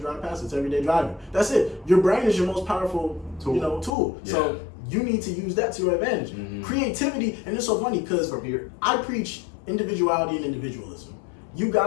drive past it. It's everyday driving. That's it. Your brain is your most powerful tool. Yeah. So you need to use that to your advantage. Mm-hmm. Creativity, and it's so funny because I preach individuality and individualism. You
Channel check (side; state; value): right; drops out; at 4.0 s